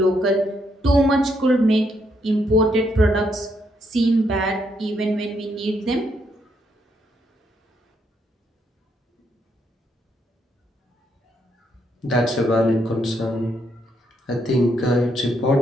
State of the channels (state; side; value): normal; both; correlation 0.75